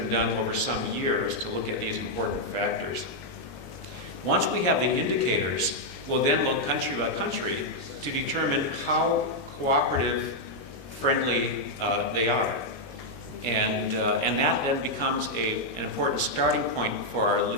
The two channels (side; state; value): right; late; 22 ms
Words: done over some years to look at these important factors. Once we have the indicators, we'll then look country by country to determine how cooperative friendly they are. And that then becomes an important starting point for